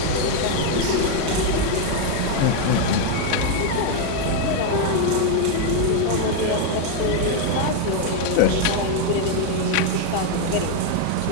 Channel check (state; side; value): different; both; correlation 0.01